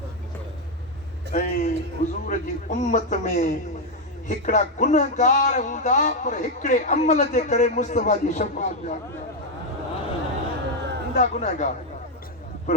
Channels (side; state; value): both; normal; correlation 0.04